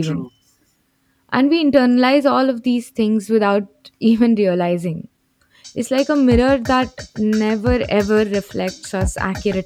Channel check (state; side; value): identical; both; correlation 1.00